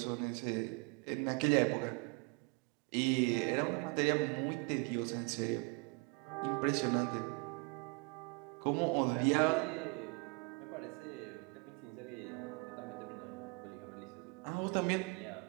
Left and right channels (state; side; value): quieter; left; 29.9 dB